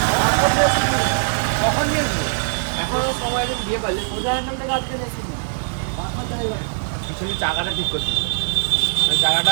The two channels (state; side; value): silent; left; digital silence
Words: কখন নিয়েছি এখনো সময় দিন দিয়ে পারলে উদাহরণ থেকে আজকে দেখছি পিছনে চাকাটা ঠিক করছি চাকাটা